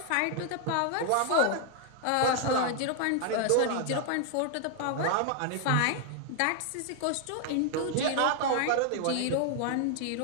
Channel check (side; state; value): both; different; correlation 0.00